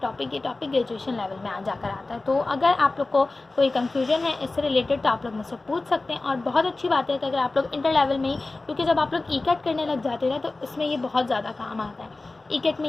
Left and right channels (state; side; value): quieter; right; 3.3 dB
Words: ग्रेजुएशन लेवल में आ जाकर आता है. तो अगर आप लोग को कोई कन्फ्यूजन है इससे रिलेटेड तो आप लोग मुझसे पूछ सकते हैं. और बहुत अच्छी बात है कि अगर आप लोग इंटर लेवल में ही, क्योंकि जब आप लोग ई-कैट करने लग जाते हैं तो इसमें ये बहुत ज़्यादा काम आता है. ई-कैट में